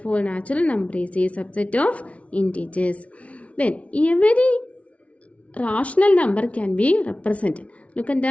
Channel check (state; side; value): late; right; 0.064 ms